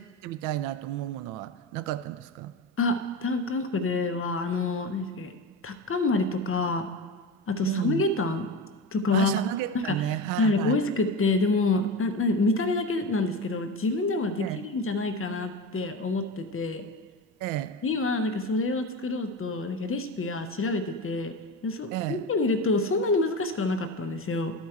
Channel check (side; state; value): both; normal; correlation 0.25